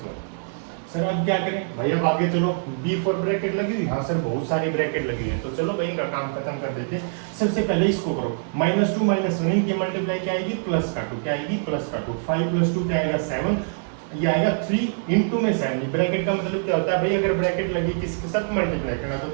Sir अब क्या करें भाई, अब आगे चलो, B4 ब्रैकेट लगी हुई, हाँ सर बहुत सारी ब्रैकेट लगी है, तो चलो भाई इनका काम खत्म कर देते हैं। सबसे पहले इसको करो, -2 -1 इनकी मल्टीप्लाई क्या आएगी, प्लस का 2, क्या आएगी प्लस का 2, 5 + 2 क्या आएगा 7, ये आएगा 3 इंटू में 7। ब्रैकेट का मतलब क्या होता है भाई, अगर ब्रैकेट लगी किसके साथ मल्टीप्लाई करना, तो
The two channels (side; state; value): left; silent; digital silence